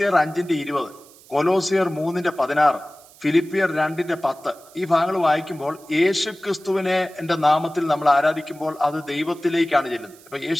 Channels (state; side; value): noise; right; hiss, 24 dB below the sound